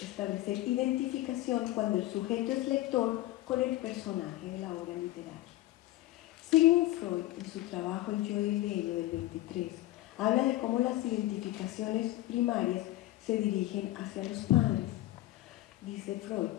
identificación cuando el sujeto es lector con el personaje de la obra literaria. Sigmund Freud, en su trabajo El yo y el ello del 23, habla de cómo las identificaciones primarias se dirigen hacia los padres. Dice Freud,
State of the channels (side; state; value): right; quieter; 16.1 dB